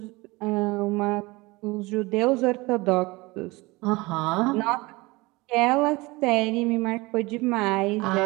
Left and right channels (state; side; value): quieter; left; 22.8 dB